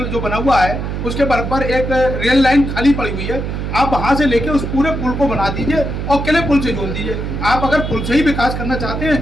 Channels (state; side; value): noise; right; hum, 4 dB below the sound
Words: जो बना हुआ है उसके बराबर एक रेल लाइन खाली पड़ी हुई है, आप वहाँ से लेके उस पूरे पुल को बना दीजिए और किले पुल से जोड़ दीजिए। आप अगर पुल से ही विकास करना चाहते